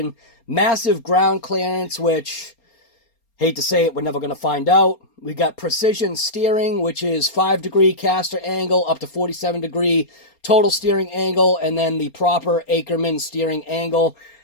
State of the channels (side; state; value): right; late; 4.3 ms